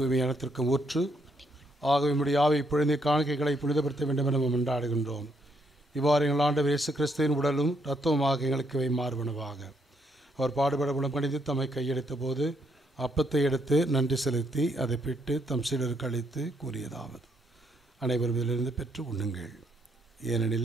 ஊற்று ஆகவே நம்முடைய ஆவை புனித காணிக்கைகளை புனிதப்படுத்த வேண்டும் என நாம் கொண்டாடுகின்றோம். இவ்வாறு எங்கள் ஆண்டவர் இயேசு கிறிஸ்துவின் உடலும் இரத்தமுமாக எங்களுக்கு இவை மாறுபனவாக. அவர் பாடுபட குணமடைந்து தம்மை கையெடுத்த போது அப்பத்தை எடுத்து நன்றி செலுத்தி அதை பிட்டு தம் சீடருக்கு அளித்து கூறியதாவது: அனைவரும் இதிலிருந்து பெற்று உண்ணுங்கள்,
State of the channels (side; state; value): both; normal; correlation 0.74